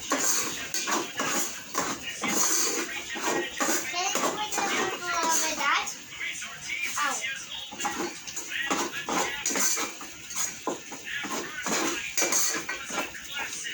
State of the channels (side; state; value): both; identical; correlation 1.00